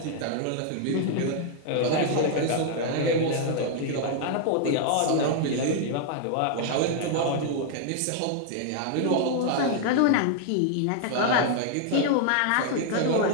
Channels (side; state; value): both; different; correlation 0.00